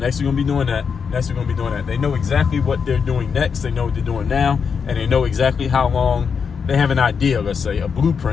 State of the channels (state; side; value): quieter; right; 6.2 dB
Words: we're gonna be doing that, next we're gonna be doing that. They know exactly what they're doing next, they know what they're doing now, and they know exactly how long. They have an idea, let's say, a